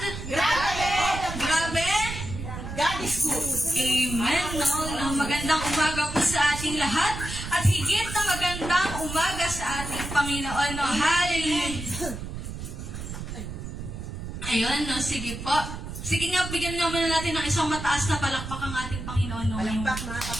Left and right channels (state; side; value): noise; right; rumble, 8 dB below the sound